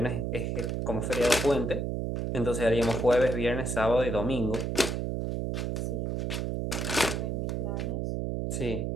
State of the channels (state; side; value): noise; right; hum, 1 dB below the sound